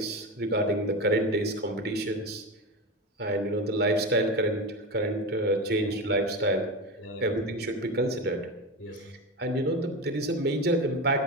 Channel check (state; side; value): normal; both; correlation 0.22